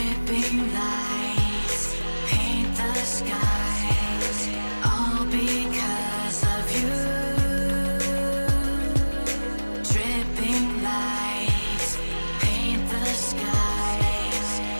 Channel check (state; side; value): inverted; both; correlation -1.00